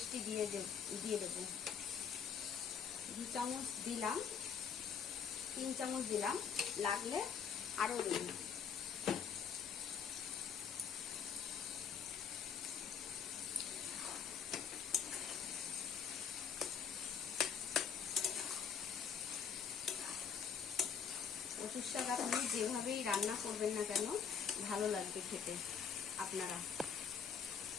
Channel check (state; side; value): quieter; right; 7.0 dB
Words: দিয়ে দেবো। 2 চামচ দিলাম, 3 চামচ দিলাম, লাগলে আরো দেব। কচুর শাক আপনি যেভাবেই রান্না করবেন না কেন ভালো লাগবে খেতে। আপনারা